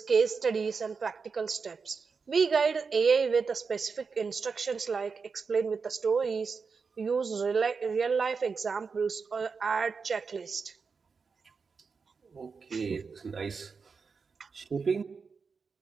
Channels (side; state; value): left; quieter; 5.1 dB